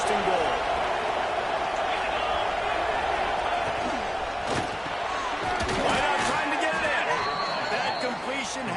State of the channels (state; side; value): identical; both; correlation 1.00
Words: and goal. Right out trying to get it in. That completion